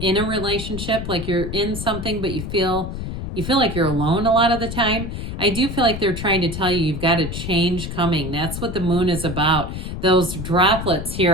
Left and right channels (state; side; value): noise; left; rumble, 6 dB below the sound